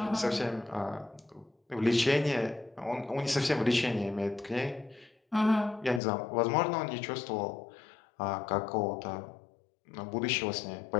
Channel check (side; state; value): right; drops out; at 6.0 s